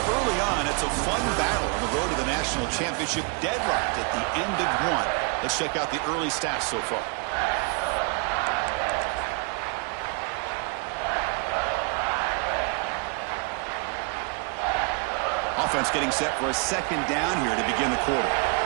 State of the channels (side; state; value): left; quieter; 35.3 dB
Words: Early on, it's a fun battle on the road to the national championship, deadlocked at the end of 1. Let's check out the early stats so far. Offense getting set for a second down here to begin the quarter.